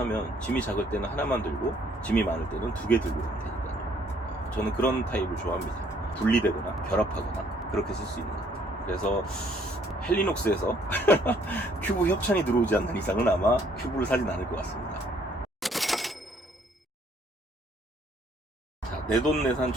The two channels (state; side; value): normal; both; correlation 0.64